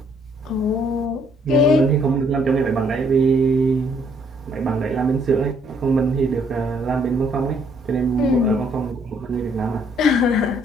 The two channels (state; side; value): normal; both; correlation 0.67